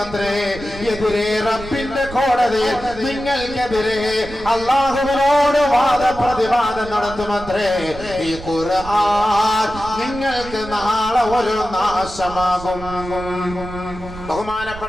എതിരെ റബ്ബിന്റെ കോടതിയിൽ നിങ്ങൾക്കെതിരെ അല്ലാഹുവിനോട് വാദപ്രതിവാദം നടത്തുമത്രേ. ഈ ഖുർആൻ നിങ്ങൾക്ക് നാളെ ഒരു നാശമാകും.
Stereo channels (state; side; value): noise; right; rumble, 14 dB below the sound